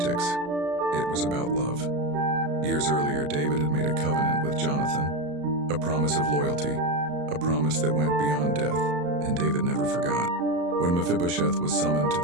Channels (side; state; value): left; late; 34 ms